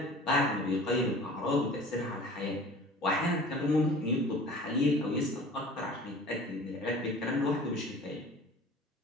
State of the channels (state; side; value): normal; both; correlation 0.43